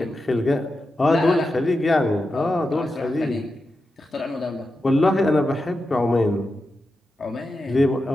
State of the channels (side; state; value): both; normal; correlation 0.90